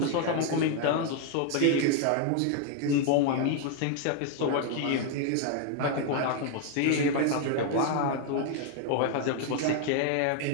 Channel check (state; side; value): different; both; correlation 0.00